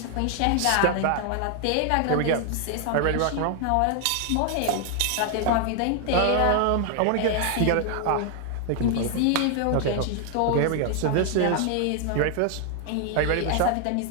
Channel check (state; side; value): different; both; correlation 0.00